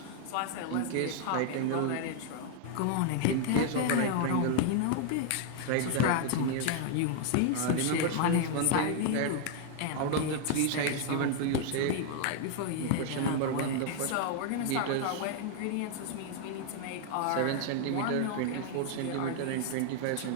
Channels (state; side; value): different; both; correlation 0.00